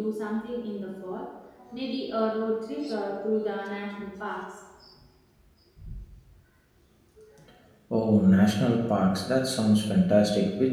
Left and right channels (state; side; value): identical; both; correlation 1.00